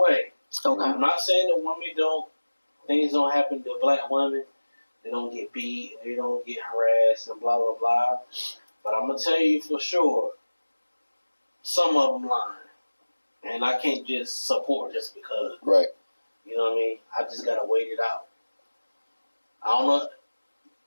Okay. I'm not saying that things don't happen to black women. They don't get beat, they don't get harassed, and blah, blah, blah. But I'm going to tell you for sure, some of them lying. And I can't just support just because. Right. You know what I mean? I just got to wait it out. I don't know.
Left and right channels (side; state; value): both; inverted; correlation -1.00